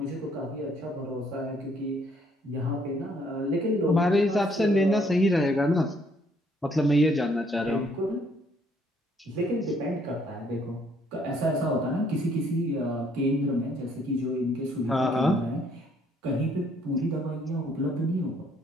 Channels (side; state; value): both; normal; correlation 0.66